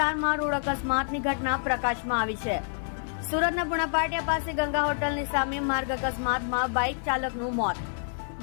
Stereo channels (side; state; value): right; silent; digital silence